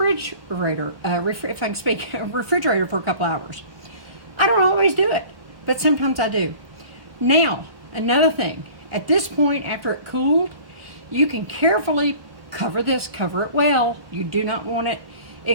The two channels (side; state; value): left; late; 1.2 ms